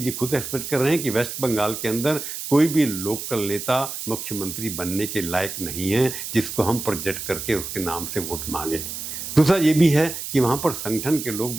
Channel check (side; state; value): right; noise; hiss, 7 dB below the sound